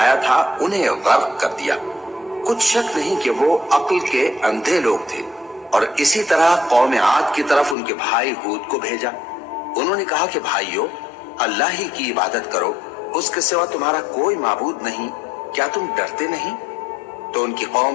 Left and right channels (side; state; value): right; drops out; at 7.8 s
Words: تھا انہیں غرق کر دیا۔ کچھ شک نہیں کہ وہ عقل کے اندھے لوگ تھے۔ اور اسی طرح قوم عاد کی طرف ان کے بھائی ہود کو بھیجا۔ انہوں نے کہا کہ بھائیو، اللہ ہی کی عبادت کرو، اس کے سوا تمہارا کوئی معبود نہیں، کیا تم ڈرتے نہیں؟ تو ان کی